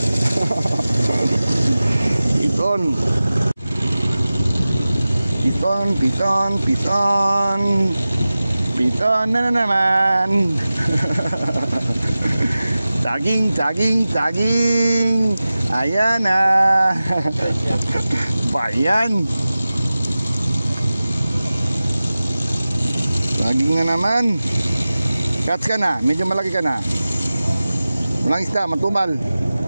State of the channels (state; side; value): inverted; both; correlation -0.96